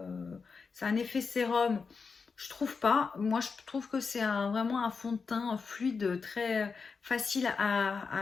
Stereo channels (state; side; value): quieter; right; 5.1 dB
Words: C'est un effet sérum, je trouve pas. Moi, je trouve que c'est vraiment un fond de teint fluide, très facile